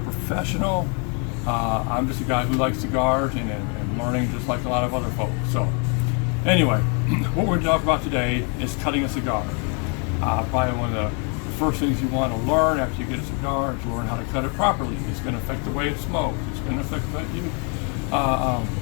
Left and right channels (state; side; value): quieter; right; 37.0 dB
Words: I'm just a guy who likes cigars and learning just like a lot of other folks. So anyway, what we're going to talk about today is cutting a cigar. Probably one of the first things you want to learn after you get a cigar is learn how to cut it properly. It's going to affect the way it smokes. It's going to affect you,